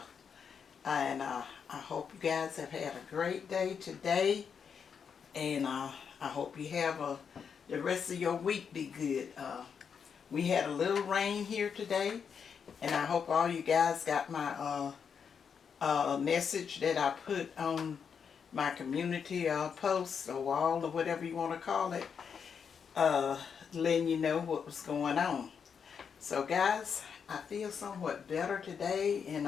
and I hope you guys have had a great day today, and I hope you have the rest of your week be good. We had a little rain here today, and I hope all you guys got my message that I put on my community post or wall or whatever you want to call it, letting you know what was going on. So guys, I feel somewhat better today,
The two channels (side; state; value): right; quieter; 6.7 dB